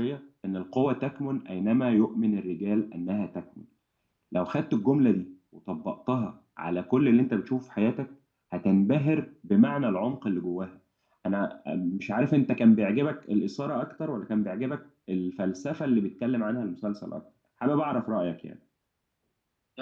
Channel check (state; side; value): identical; both; correlation 1.00